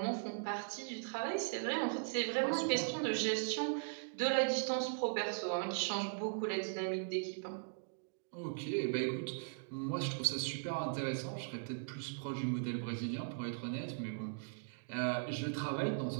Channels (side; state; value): left; silent; digital silence